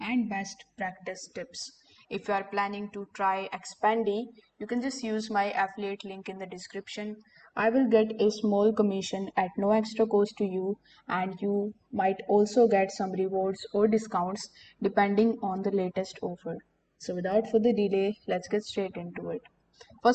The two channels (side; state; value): both; identical; correlation 1.00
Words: and best practice tips. If you are planning to try Expandy, you can just use my affiliate link in the description. I will get a small commission at no extra cost to you, and you might also get some rewards or discounts depending on the latest offer. So without further delay, let's get straight into it.